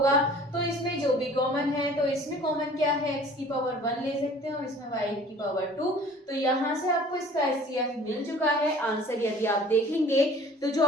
तो इसमें जो भी कॉमन है, तो इसमें कॉमन क्या है, x की पावर 1 ले सकते हैं और इसमें y की पावर 2। तो यहाँ से आपको इसका एचसीएफ मिल चुका है। आंसर यदि आप देखेंगे तो जो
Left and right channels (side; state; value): both; normal; correlation 0.49